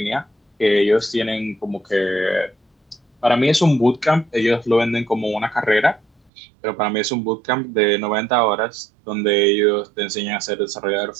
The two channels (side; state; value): left; drops out; at 6.3 s